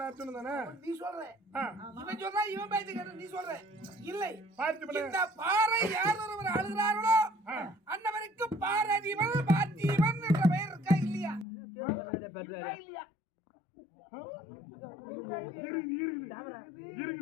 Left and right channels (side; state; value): right; drops out; at 11.5 s